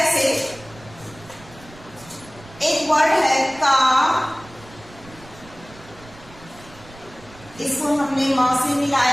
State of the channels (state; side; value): noise; right; rumble, 21 dB below the sound